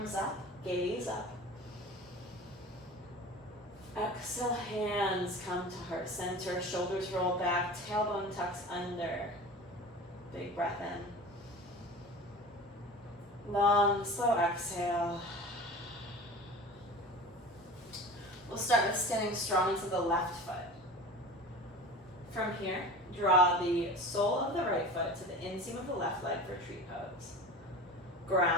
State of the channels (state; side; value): normal; both; correlation 0.36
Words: up, gaze up. Exhale, hands come to heart center, shoulders roll back, tailbone tucks under. Big breath in. Long, slow exhale. We'll start with standing strong to the left foot. From here, draw the sole of the right foot to the inseam of the left leg for tree pose.